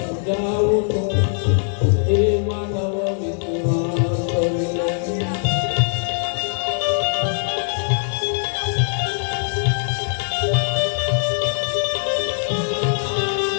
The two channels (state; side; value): silent; right; digital silence